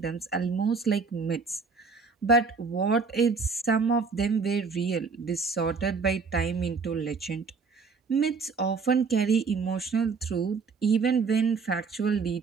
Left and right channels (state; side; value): quieter; left; 4.8 dB